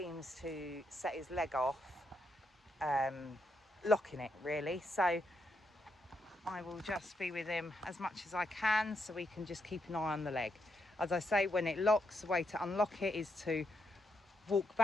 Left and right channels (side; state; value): both; normal; correlation 0.80